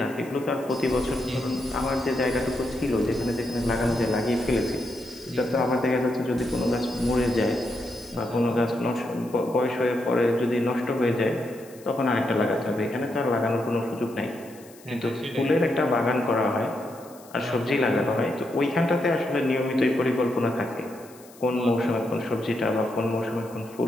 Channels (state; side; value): noise; left; hiss, 24 dB below the sound